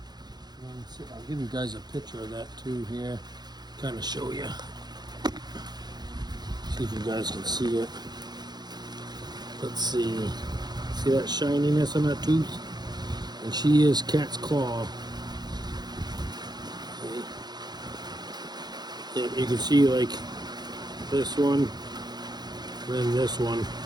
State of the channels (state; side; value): late; left; 0.20 ms